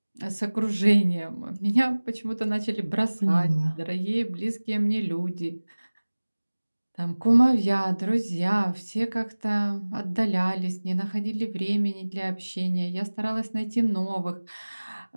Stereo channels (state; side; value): inverted; both; correlation -1.00